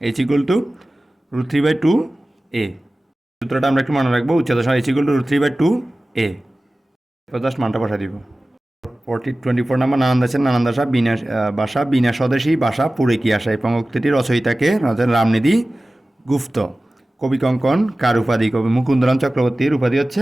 h=√3/2 a। সূত্রটা আমরা একটু মনে রাখবো, উচ্চতা সমান h=√3/2 a। এরপর জাস্ট মানটা বসা দিব। 24 নাম্বার, নানান দেশের নানান ভাষা বিনা স্বদেশী ভাষা পুরে কি আসা। এই পঙ্ক্তিটির রচয়িতাকে রামনিধি গুপ্ত। কবি কঙ্কন কার উপাধি? কবি মুকুন্দরাম চক্রবর্তীর উপাধি হচ্ছে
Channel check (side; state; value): both; normal; correlation 0.97